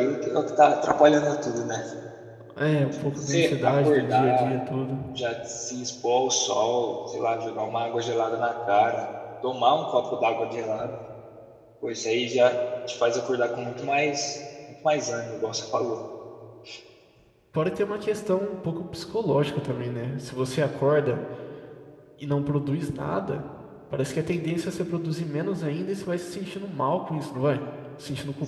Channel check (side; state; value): both; identical; correlation 1.00